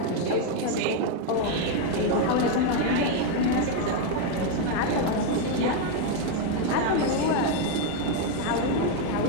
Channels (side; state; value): both; different; correlation 0.02